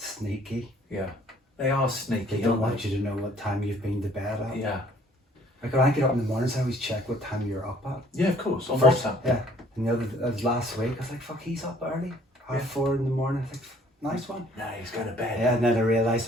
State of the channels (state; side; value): normal; both; correlation 0.58